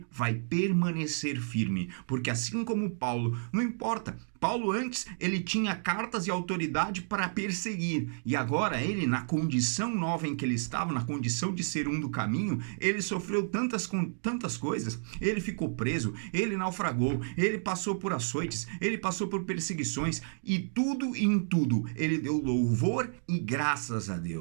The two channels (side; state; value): left; silent; digital silence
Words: vai permanecer firme, porque assim como Paulo, não importa, Paulo antes ele tinha cartas e autoridade para perseguir, e agora ele, na condição nova em que ele estava, na condição de ser um do caminho, ele sofreu tantas coisas, ele ficou preso, ele naufragou, ele passou por açoites, ele passou por perseguições, e tudo em tudo ele deu louvor e graças a